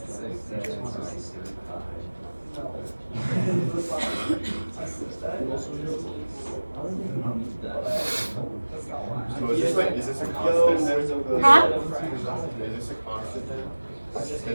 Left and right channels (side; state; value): both; inverted; correlation -1.00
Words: So is this a constant? Huh? Is this a constant?